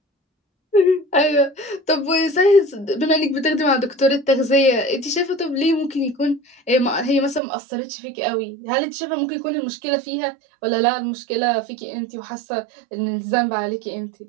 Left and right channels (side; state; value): left; drops out; at 7.4 s